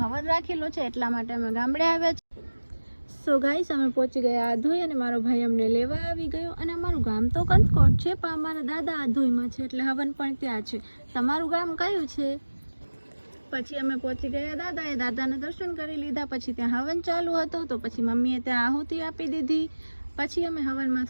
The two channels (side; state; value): both; inverted; correlation -1.00